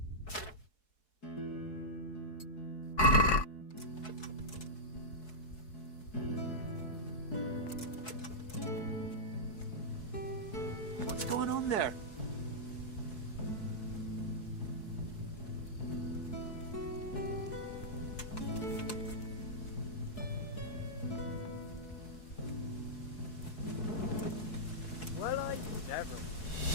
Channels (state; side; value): late; right; 4.7 ms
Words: What's going on there? Well, I never.